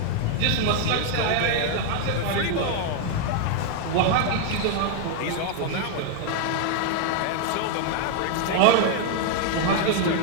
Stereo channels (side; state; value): both; different; correlation 0.00